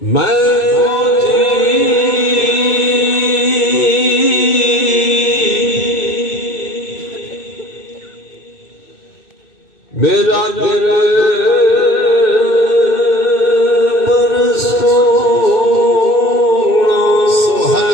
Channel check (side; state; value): right; late; 2.6 ms